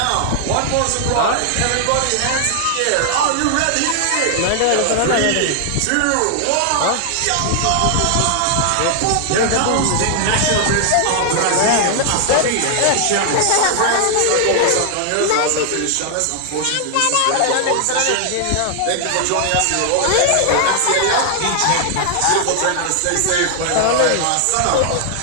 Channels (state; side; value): different; both; correlation 0.00